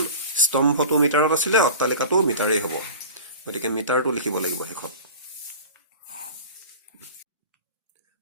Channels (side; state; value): both; inverted; correlation -0.37